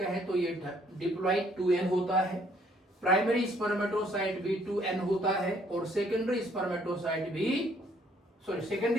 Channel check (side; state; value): both; normal; correlation 0.64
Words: तो ये डिप्लॉइड 2n होता है, प्राइमरी स्पर्मेटोसाइट भी 2n होता है, और सेकेंडरी स्पर्मेटोसाइट भी